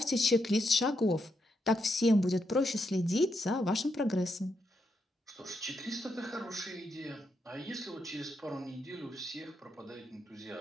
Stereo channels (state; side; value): normal; both; correlation 0.81